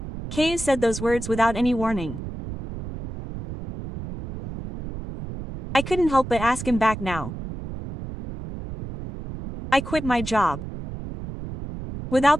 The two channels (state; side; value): noise; right; rumble, 9 dB below the sound